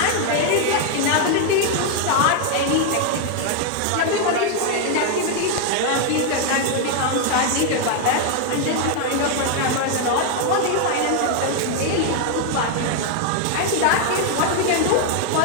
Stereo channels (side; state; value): both; different; correlation 0.00